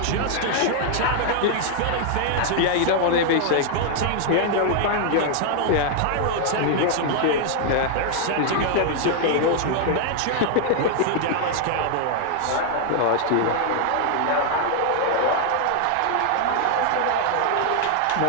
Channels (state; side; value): different; both; correlation 0.00